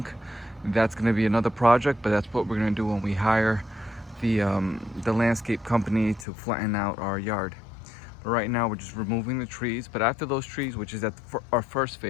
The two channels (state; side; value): drops out; right; at 6.2 s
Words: That's gonna be another project, but that's what we're gonna do when we hire the landscape company to flatten out our yard. But right now we're just removing the trees. But after those trees, which is at our first